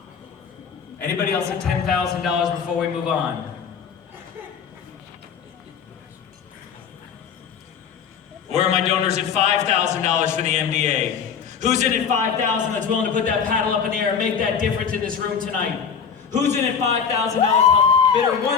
Anybody else at $10,000 before we move on? Where are my donors at $5,000 for the MDA? Who's in at $5,000 that's willing to put that paddle up in the air and make that difference in this room tonight? Who's in at $5,000? Bidder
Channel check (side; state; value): right; quieter; 6.9 dB